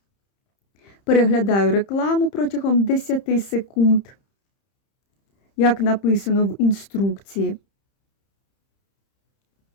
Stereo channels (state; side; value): late; right; 30 ms